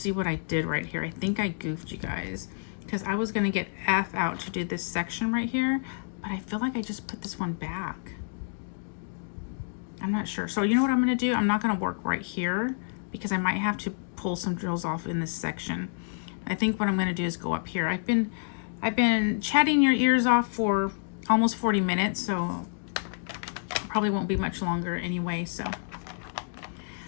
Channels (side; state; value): right; silent; digital silence